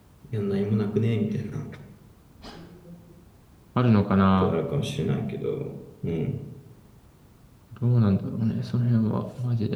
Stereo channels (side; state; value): both; identical; correlation 1.00